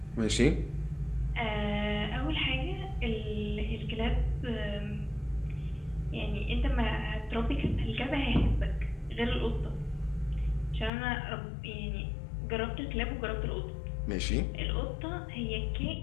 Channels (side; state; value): right; drops out; at 10.9 s